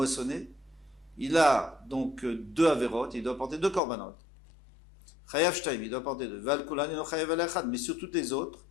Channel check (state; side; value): drops out; right; at 3.8 s